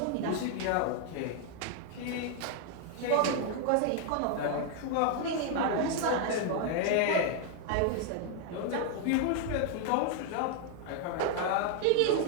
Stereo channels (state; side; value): different; both; correlation 0.00